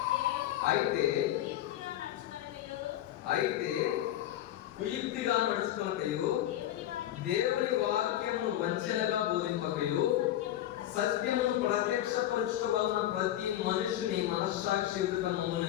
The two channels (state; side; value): quieter; right; 12.9 dB